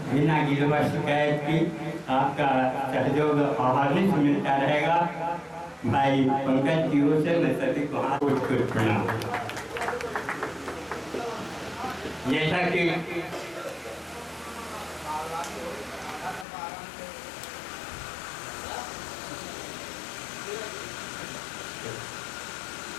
बिना गिरवा शिकायत की आपका सहयोग अहर्निश मिलता रहेगा। भाई पंकज की ओर से मैं सभी को हाथ जोड़ प्रणाम। जैसा कि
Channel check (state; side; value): drops out; right; at 16.4 s